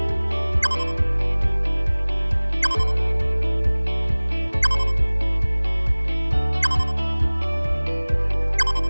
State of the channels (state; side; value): inverted; both; correlation -1.00